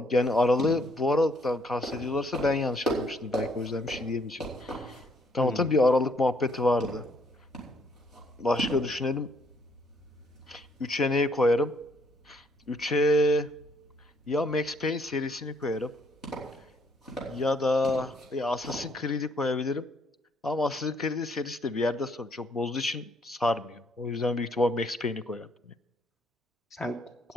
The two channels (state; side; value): normal; both; correlation 0.68